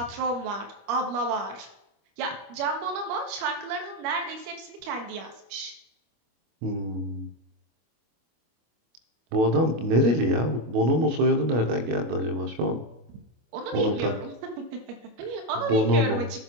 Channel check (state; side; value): late; left; 25 ms